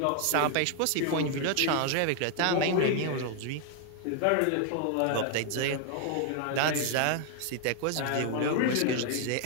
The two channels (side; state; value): both; different; correlation 0.00